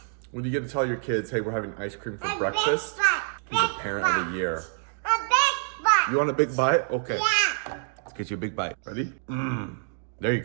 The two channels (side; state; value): left; silent; digital silence